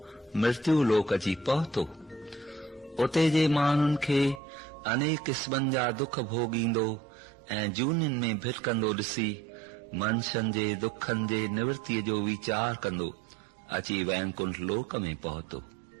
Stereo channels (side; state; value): left; drops out; at 4.4 s